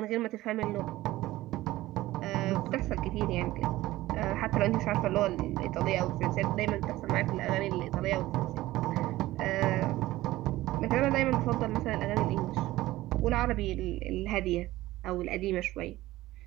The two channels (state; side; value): quieter; left; 16.9 dB